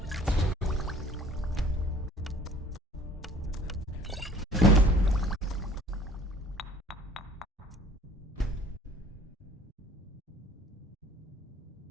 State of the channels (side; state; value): both; normal; correlation 0.51